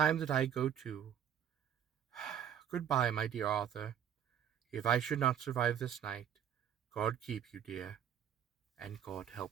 that I go too. Goodbye, my dear Arthur. If I should not survive this night, God keep you, dear, and God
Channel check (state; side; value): quieter; left; 9.3 dB